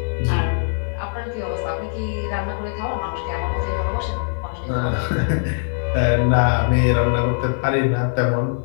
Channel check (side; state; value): right; silent; 65 dB below the other